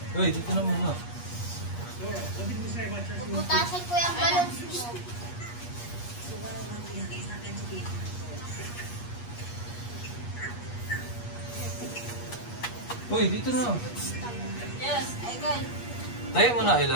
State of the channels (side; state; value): right; late; 8.4 ms